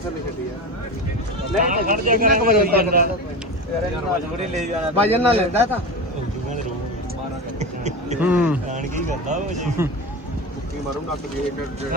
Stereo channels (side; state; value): both; normal; correlation 0.25